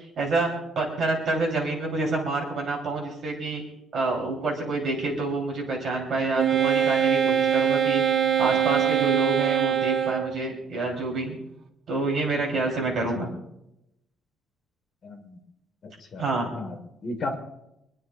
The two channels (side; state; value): left; quieter; 4.9 dB